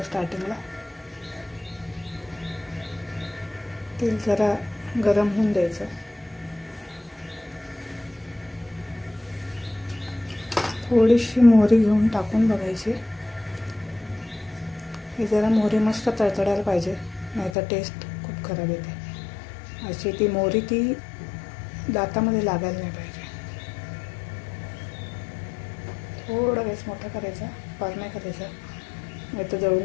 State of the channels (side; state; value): right; drops out; at 17.5 s